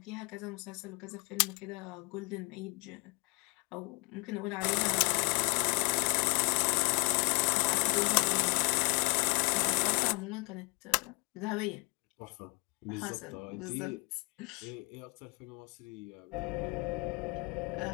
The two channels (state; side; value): quieter; right; 31.1 dB